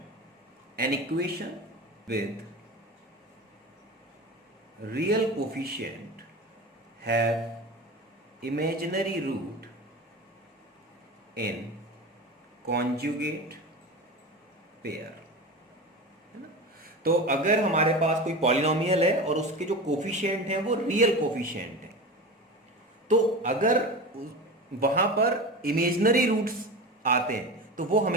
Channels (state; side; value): normal; both; correlation 0.29